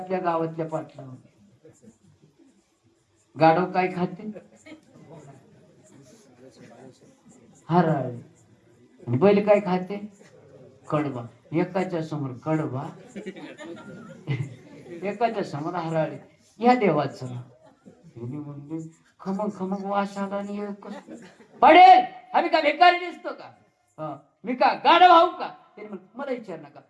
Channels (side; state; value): both; identical; correlation 1.00